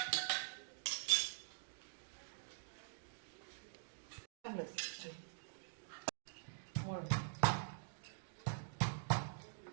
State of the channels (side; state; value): left; silent; digital silence